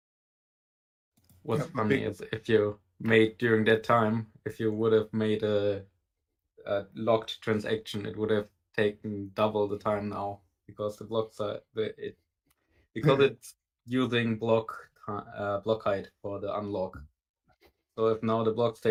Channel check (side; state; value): both; identical; correlation 1.00